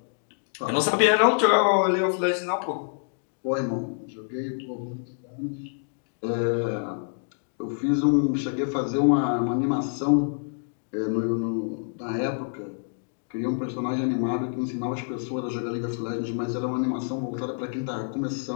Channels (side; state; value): right; silent; 60 dB below the other